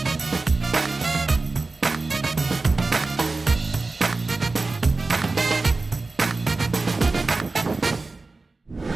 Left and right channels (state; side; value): quieter; left; 3.6 dB